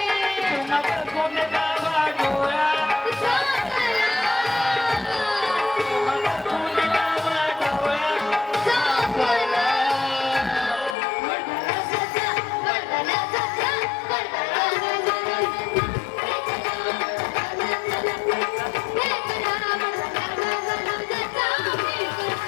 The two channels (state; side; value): drops out; right; at 11.0 s